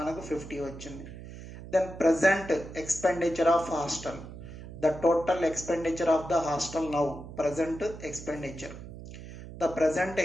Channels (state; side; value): noise; right; hum, 13 dB below the sound